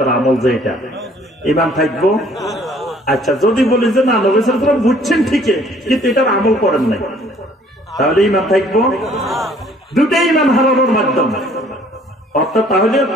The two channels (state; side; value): normal; both; correlation 0.58